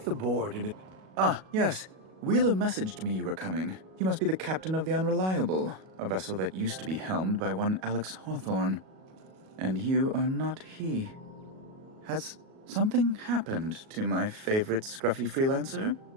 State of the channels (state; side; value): late; left; 37 ms